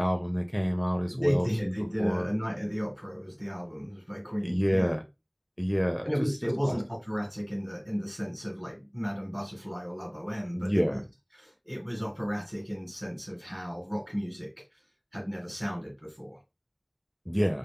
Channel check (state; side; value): identical; both; correlation 1.00